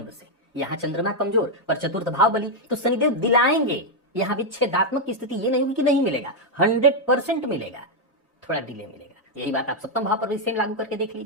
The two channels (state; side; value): normal; both; correlation 0.00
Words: से। यहां चंद्रमा कमजोर पर चतुर्थ भाव बली, तो शनिदेव दिलाएंगे। यहां विच्छेदात्मक की स्थिति ये नहीं होगी कि नहीं मिलेगा, 100% मिलेगा, थोड़ा डिले मिलेगा। यही बात आप सप्तम भाव पर भी सेम लागू करके देख